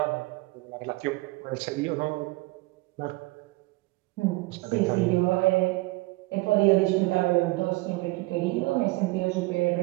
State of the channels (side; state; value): left; quieter; 22.4 dB